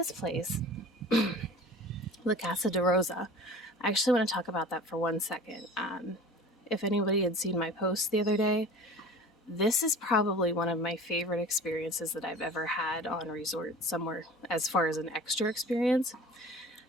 place, La Casa de Rosa, I actually want to talk about that for 1 second. If anybody had seen my post the other day, this is probably one of my favorite experiences that I've ever had on a resort somewhere as far as an extra experience.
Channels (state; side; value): normal; both; correlation 0.40